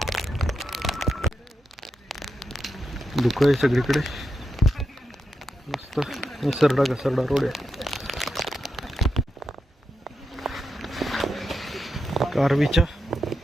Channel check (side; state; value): both; normal; correlation 0.86